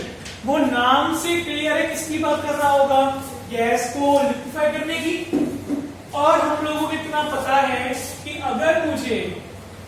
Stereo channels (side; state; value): both; identical; correlation 1.00